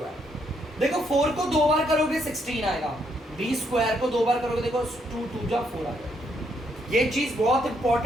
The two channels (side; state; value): both; normal; correlation 0.74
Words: देखो 4 को 2 बार करोगे 16 आएगा, b स्क्वायर को 2 बार करोगे देखो 2 2 जा 4 आएगा। ये चीज बहुत